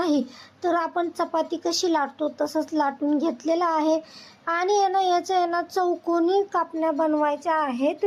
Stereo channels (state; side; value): identical; both; correlation 1.00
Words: तर आपण चपाती कशी लाटतो तसंच लाटून घेतलेलं आहे. आणि याच्या ना चौकोनी कापण्या बनवायच्या आहेत.